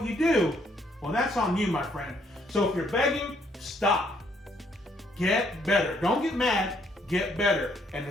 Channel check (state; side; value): normal; both; correlation 0.68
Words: you do, well, that's on you, my friend. So if you're begging, stop. Get better. Don't get mad. Get better. And